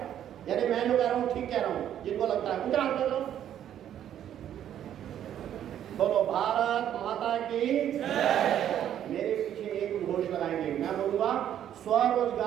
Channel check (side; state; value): left; quieter; 10.5 dB